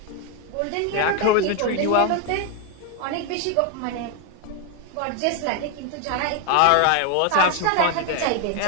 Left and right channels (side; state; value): both; different; correlation 0.01